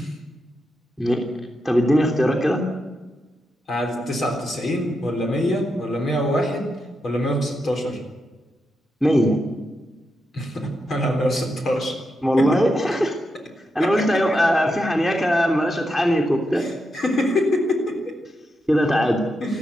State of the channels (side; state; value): both; normal; correlation 0.85